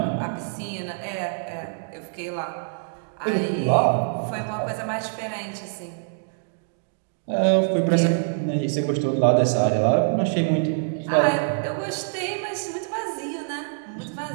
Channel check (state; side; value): silent; left; digital silence